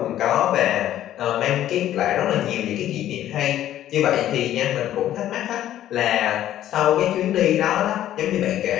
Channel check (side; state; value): right; quieter; 12.3 dB